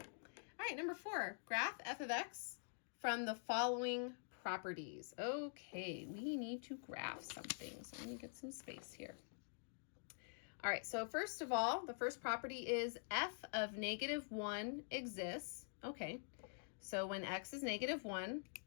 All right, number 4, graph f of x from the following properties. Okay, we need to graph something, so let me get some space here. All right, so first of all, the first property is f of -1 exists. Okay, so when x is -1,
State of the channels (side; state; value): right; silent; digital silence